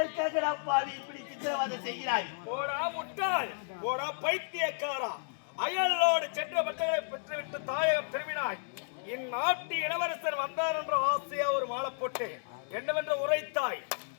நான் பாவி இப்படி சித்திரவதை செய்கிறாய்? போடா முட்டாள், போடா பைத்தியக்காரா. அயலோடு சென்ற பட்டங்களை பெற்றுவிட்டு தாயகம் திரும்பினாய். இந்நாட்டு இளவரசர் வந்தார் என்ற ஆசையா ஒரு மாலை போட்டு என்னவென்று உரைத்தாய்.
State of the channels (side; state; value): right; silent; 56 dB below the other